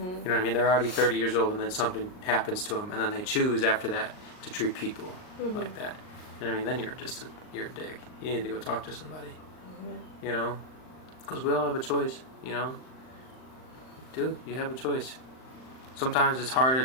what I mean? They're already 30 years old, and then something happens to them, and then they choose after that to treat people like that. And I mean, then you're a dick. You need to go talk to somebody. You know, because we all have a choice. You know, dude, you have a choice. Sometimes it's harder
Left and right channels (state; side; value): late; right; 39 ms